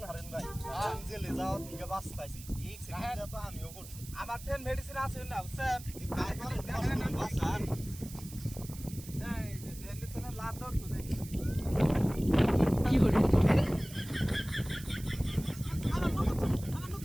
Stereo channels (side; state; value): right; noise; hiss, 16 dB below the sound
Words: হারেন ভাই আমি জেলে যাওয়ার দিকে বাঁচতাইছি এক সেকেন্ডে তো আমিও করছি আমার 10 মেডিসিন আছে না স্যার ভাই করেন বাঁচান এই যে দেন তো না লাভ দর তো দেখি কি করে?